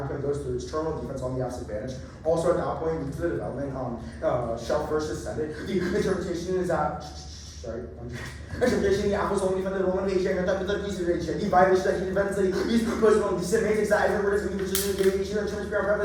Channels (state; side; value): identical; both; correlation 1.00